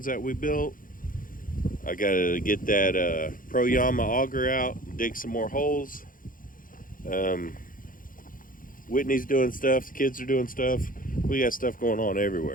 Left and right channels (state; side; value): late; right; 0.40 ms